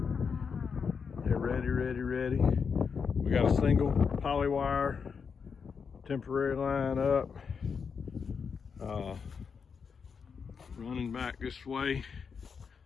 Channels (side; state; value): right; quieter; 6.0 dB